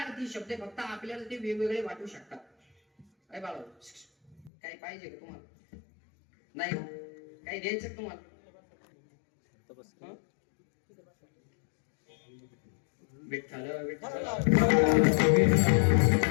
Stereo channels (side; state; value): right; drops out; at 4.5 s